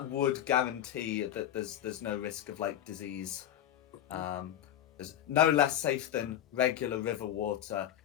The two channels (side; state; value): right; quieter; 11.4 dB